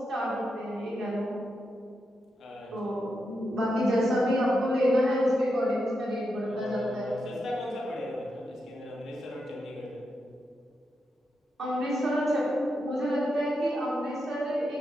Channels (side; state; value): both; normal; correlation 0.85